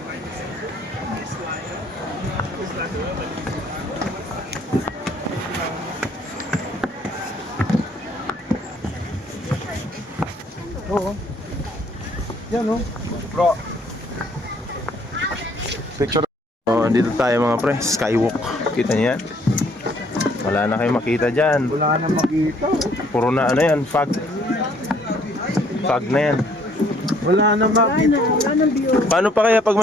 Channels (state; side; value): normal; both; correlation 0.63